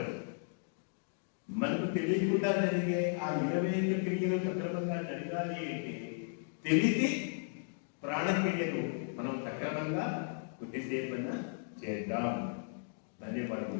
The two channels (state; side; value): silent; right; digital silence